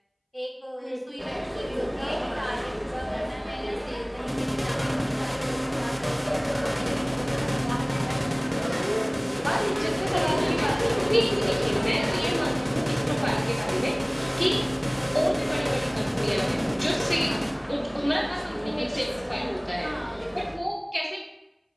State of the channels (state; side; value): identical; both; correlation 1.00